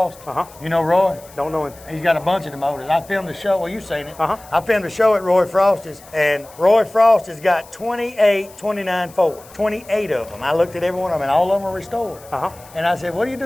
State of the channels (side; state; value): left; noise; hiss, 23 dB below the sound